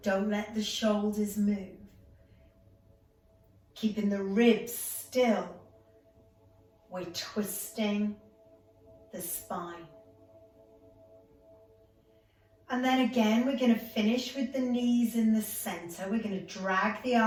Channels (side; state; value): both; identical; correlation 1.00